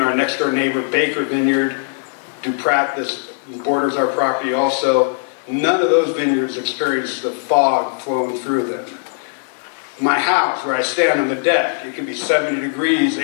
our next door neighbor, Baker Vineyard, Duprat, this borders our property also, none of those vineyards experience the fog flowing through them. My house, where I stand on the deck, it can be 70 degrees,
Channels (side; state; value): right; silent; 57 dB below the other